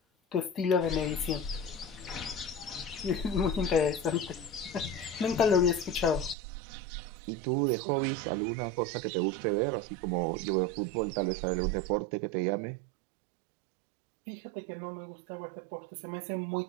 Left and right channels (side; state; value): left; drops out; at 6.4 s